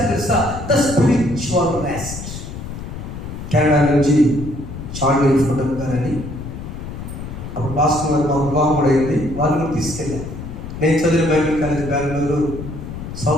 తెలుసా? The spiritual rest. కెనడా నుంచి చార్లీ ఫోటం గారని, అప్పుడు పాస్టర్ గారు మా వివాహం కూడా అయింది, వాళ్ళు కూడా తీసుకెళ్ళాను. నేను చదివిన బైబిల్ కాలేజ్ బెంగళూరు,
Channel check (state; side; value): noise; left; rumble, 9 dB below the sound